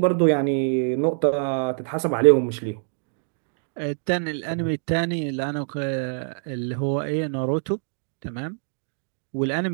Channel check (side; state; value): left; silent; digital silence